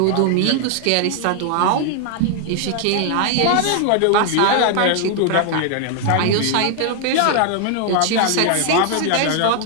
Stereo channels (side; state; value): both; different; correlation 0.00